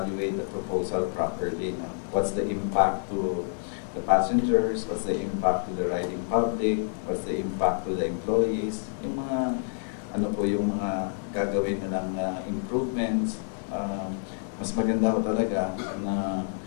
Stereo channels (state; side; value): silent; right; digital silence